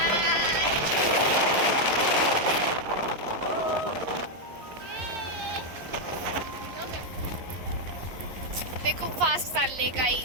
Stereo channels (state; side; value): late; left; 11 ms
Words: ते खूप फास्ट चालले